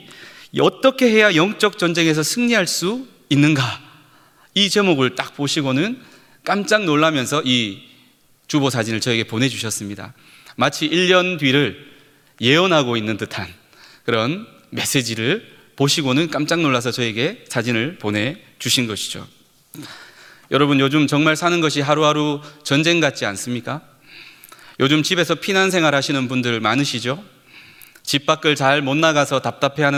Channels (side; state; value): both; identical; correlation 1.00